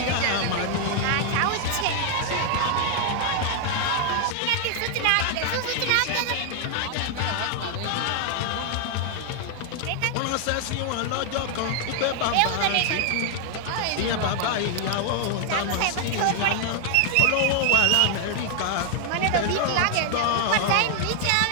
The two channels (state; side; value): different; both; correlation 0.00